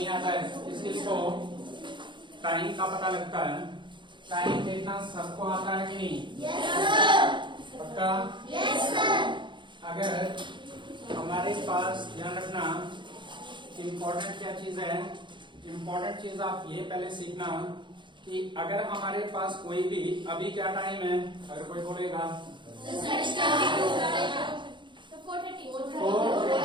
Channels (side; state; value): left; late; 0.23 ms